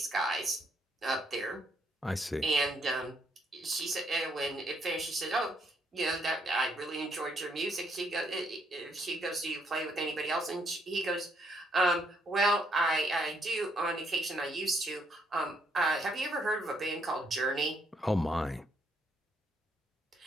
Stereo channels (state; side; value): normal; both; correlation 0.71